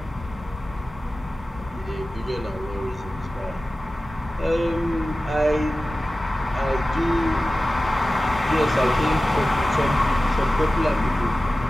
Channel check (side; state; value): both; normal; correlation 0.96